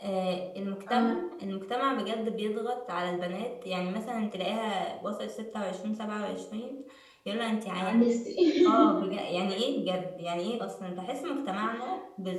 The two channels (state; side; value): identical; both; correlation 1.00